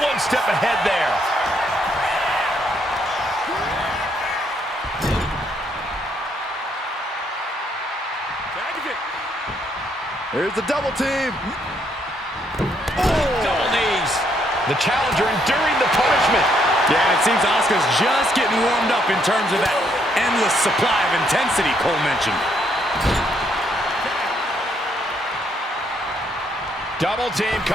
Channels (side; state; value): both; normal; correlation 0.72